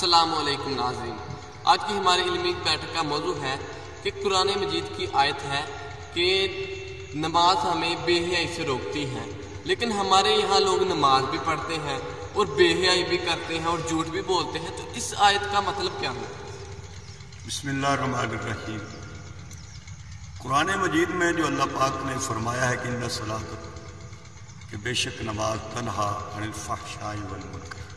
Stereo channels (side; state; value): both; identical; correlation 1.00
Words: علیکم ناظرین، آج کی ہماری علمی بیٹھک کا موضوع ہے کہ قرآن مجید کی آیت ہے کہ نماز ہمیں بے حیائی سے روکتی ہے، لیکن ہمارے یہاں لوگ نماز بھی پڑھتے ہیں اور بے حیائی بھی کرتے ہیں اور جھوٹ بھی بولتے ہیں، تو اس آیت کا مطلب کیا ہے؟ بسم اللہ الرحمن الرحیم۔ قرآن مجید میں جو اللہ پاک نے فرمایا ہے کہ ان الصلاۃ، کہ بے شک نماز تنہا عن الفحشاء والمنکر،